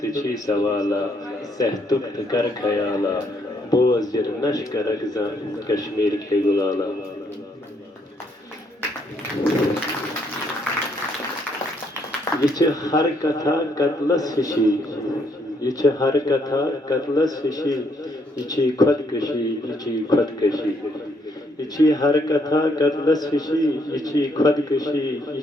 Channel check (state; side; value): normal; both; correlation 0.71